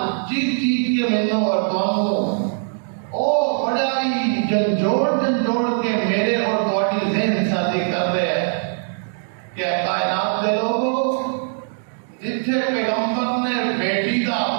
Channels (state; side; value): silent; left; digital silence